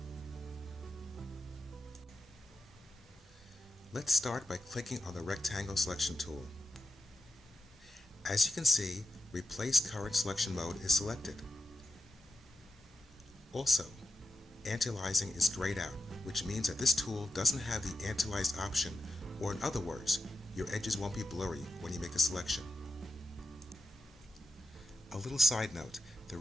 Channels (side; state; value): both; normal; correlation 0.88